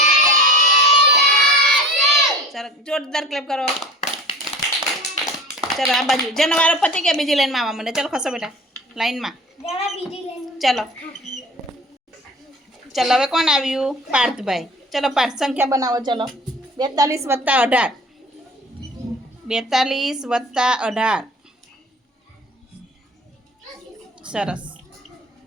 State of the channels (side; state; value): both; normal; correlation 0.42